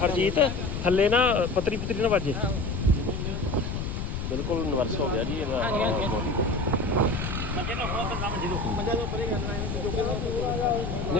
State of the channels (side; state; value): left; noise; rumble, 4 dB below the sound